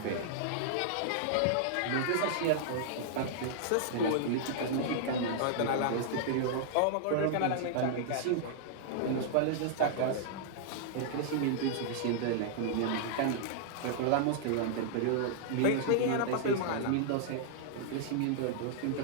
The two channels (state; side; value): different; both; correlation -0.01